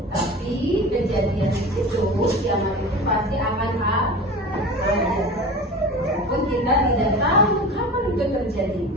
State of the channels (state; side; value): normal; both; correlation 0.34